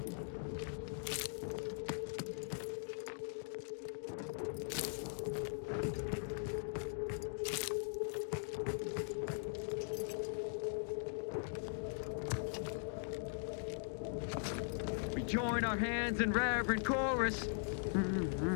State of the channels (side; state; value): right; silent; digital silence